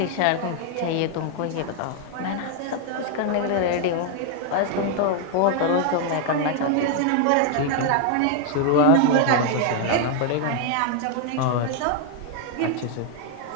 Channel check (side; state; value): both; different; correlation 0.00